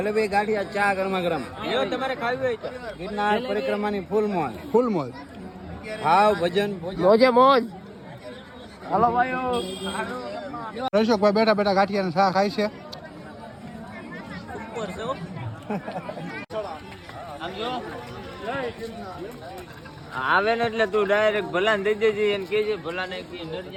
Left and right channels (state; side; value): identical; both; correlation 1.00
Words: ગાંઠિયા ચા ગરમા ગરમ જો તમારે ખાવી હોય તો ગિરનાર પરિક્રમાની ફૂલ મોજ ફૂલ મોજ ભાવ ભજન મોજે મોજ. રશોકભાઈ બેઠા બેઠા ગાંઠિયાને શા ખાય છે ઉપર છે હો. આમ જો. આવે ને એટલે તું ડાયરેક્ટ ભલાને દઈ દેજે એને કહેજે ભલાને કે